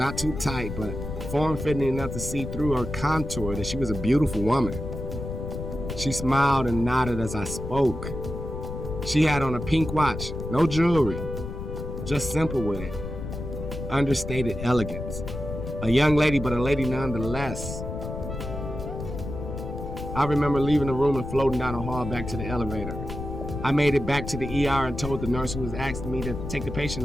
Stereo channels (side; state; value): left; noise; rumble, 7 dB below the sound